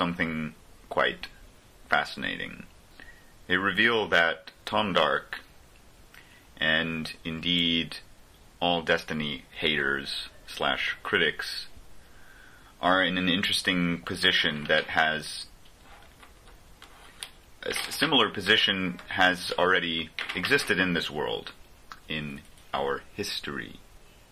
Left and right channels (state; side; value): identical; both; correlation 1.00